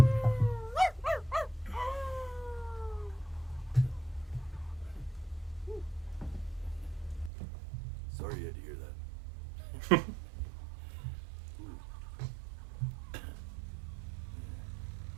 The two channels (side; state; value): left; drops out; at 7.3 s